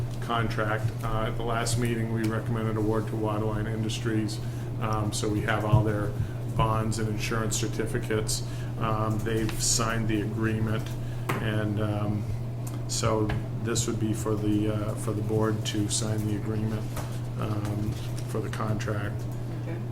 contract. At the last meeting, we recommended award to Waterline Industries, so we have all their bonds and insurance certificates. They've signed the agreement, and so this would be for the board to sign the agreement for the contract. Okay.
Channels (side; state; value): both; identical; correlation 1.00